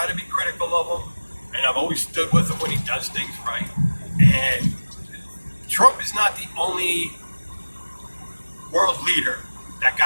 to be critical of him, and I've always stood with him when he does things right. And Trump is not the only world leader that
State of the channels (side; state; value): both; inverted; correlation -1.00